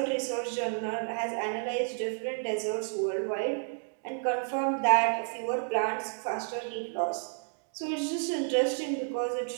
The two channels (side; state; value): left; silent; digital silence